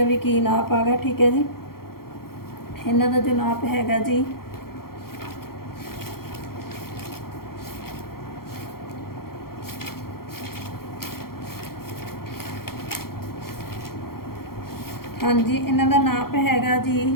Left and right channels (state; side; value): late; right; 0.93 ms